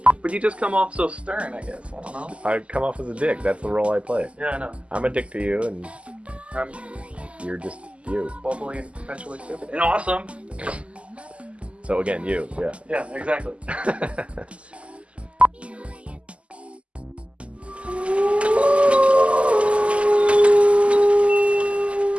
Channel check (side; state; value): left; late; 0.058 ms